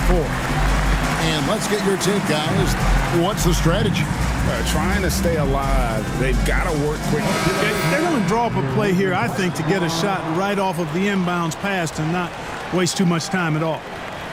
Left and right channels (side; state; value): both; identical; correlation 1.00